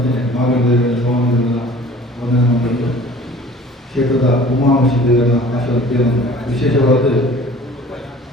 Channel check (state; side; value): normal; both; correlation 0.47